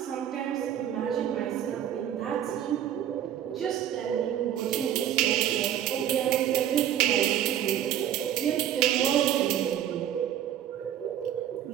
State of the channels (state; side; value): quieter; left; 10.6 dB